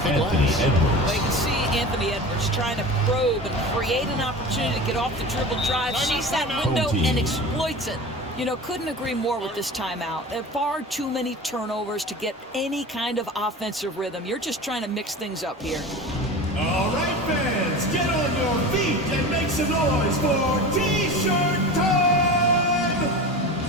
the glass. Well, you can see Anthony Edwards trying to probe and create an opportunity to get off the dribble drive, sees that window, and exploits it. You know, couldn't agree more with this timeout. There are far too many turnovers to get any kind of offensive rhythm. You're just trying to mix things up here. All right, fans, get on your feet and make some noise for T-shirt time!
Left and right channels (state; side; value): normal; both; correlation 0.33